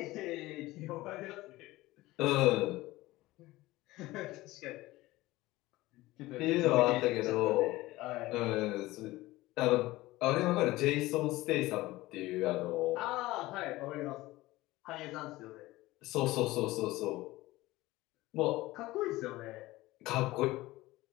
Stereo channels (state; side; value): quieter; right; 18.5 dB